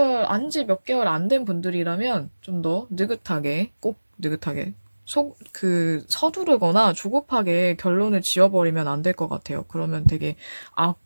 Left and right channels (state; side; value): inverted; both; correlation -1.00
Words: 안지 몇 개월 안 된 분들이라면 좀 더 느긋하게, 꼭 느긋하게, 서두르거나 조급하게 결론을 지어버리면 안 될 것 같아요. 그러면 되게